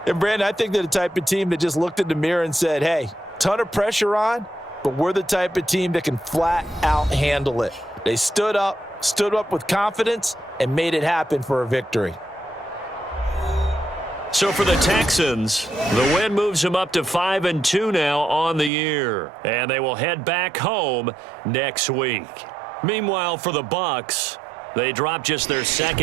And, Brandon, I think they're the type of team that just looked in the mirror and said, hey, ton of pressure on, but we're the type of team that can flat out handle it. They stood up with confidence, and made it happen for a victory. So for the Texans, the win moves them up to 5-2 now on the year. And they will head back home next week. Meanwhile, for the Bucs, they drop just their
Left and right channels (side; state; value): left; drops out; at 18.7 s